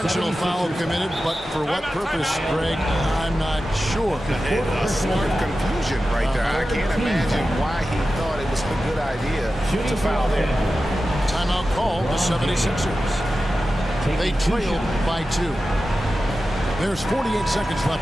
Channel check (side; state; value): both; normal; correlation 0.93